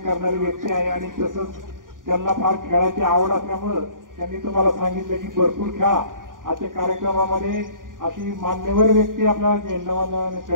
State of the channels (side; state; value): left; late; 0.89 ms